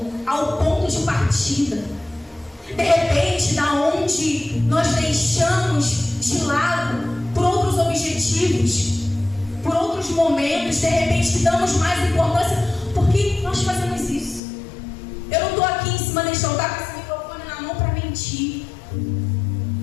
ao ponto de partida. De repente, da onde nós deixamos de lado por outros objetivos, por outros momentos, de repente que damos mais importância, porque nós fazemos isso. Eu não estou aqui em cima deste altar com esse microfone na mão para mentir,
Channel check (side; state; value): right; drops out; at 14.4 s